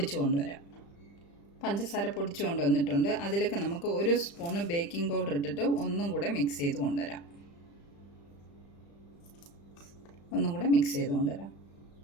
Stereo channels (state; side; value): late; right; 35 ms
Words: കൊണ്ടുവരാം. പഞ്ചസാര പൊടിച്ചു കൊണ്ടുവന്നിട്ടുണ്ട്. അതിലേക്ക് നമുക്ക് 1 സ്പൂണ് ബേക്കിംഗ് പൗഡർ ഇട്ടിട്ട് ഒന്നും കൂടെ മിക്സ് ചെയ്ത് കൊണ്ടുവരാം.